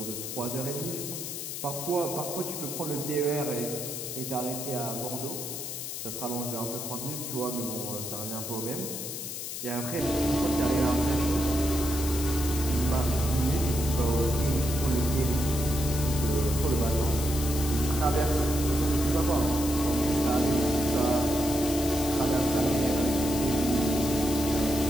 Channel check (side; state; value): left; noise; hiss, 6 dB below the sound